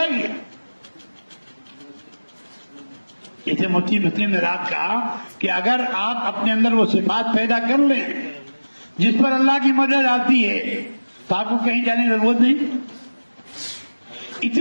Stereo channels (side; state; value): both; inverted; correlation -1.00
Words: گی. جیسے مفتی مسلم نے رات کہا کہ اگر آپ اپنے اندر وہ صفات پیدا کر لیں جس پر اللہ کی مدد آتی ہے تو آپ کو کہیں جانے کی ضرورت نہیں.